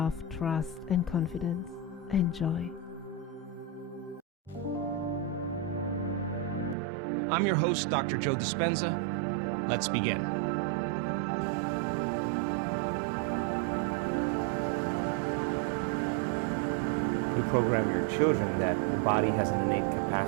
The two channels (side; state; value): left; drops out; at 6.8 s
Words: trust and confidence. Enjoy. I'm your host, Dr. Joe Dispenza. Let's begin. You program your children that the body has an innate